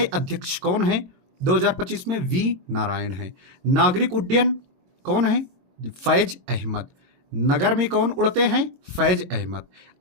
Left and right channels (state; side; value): late; left; 22 ms